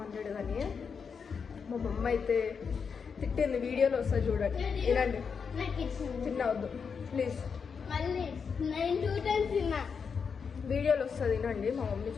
కానీ మా మమ్మ అయితే తిట్టింది వీడియోలో వస్తుంది చూడండి వినండి తినవద్దు ప్లీజ్ వీడియోలో వస్తుంది వినండి మా మమ్మీ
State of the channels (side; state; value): right; quieter; 6.0 dB